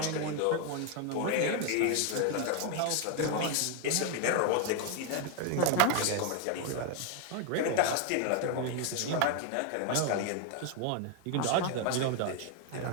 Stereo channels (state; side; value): different; both; correlation 0.01